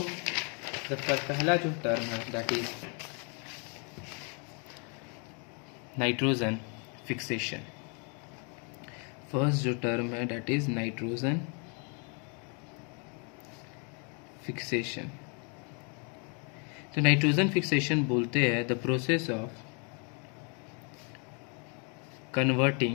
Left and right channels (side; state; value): right; quieter; 36.3 dB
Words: पहला जो टर्म है that is nitrogen fixation. First जो टर्म है दैट इज नाइट्रोजन फिक्सेशन। तो नाइट्रोजन फिक्सेशन बोलते हैं the process of